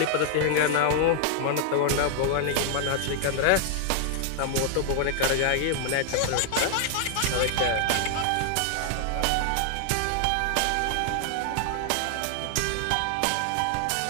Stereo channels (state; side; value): different; both; correlation 0.00